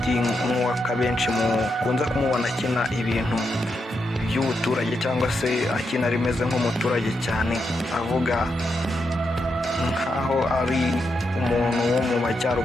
nk'uwaka benshi mukunze kumubona akina ibintu by'ubuturage cyangwa se akina rimeze nk'umuturage cyane, avuga nkaho ari umuntu wo mu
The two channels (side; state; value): both; normal; correlation 0.83